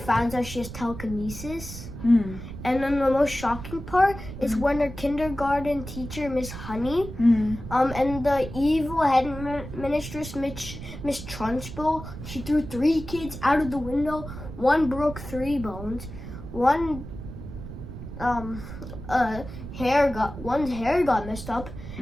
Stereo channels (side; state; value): right; noise; rumble, 11 dB below the sound